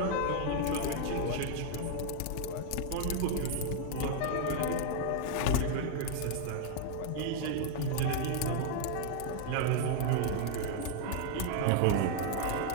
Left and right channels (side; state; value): both; different; correlation 0.00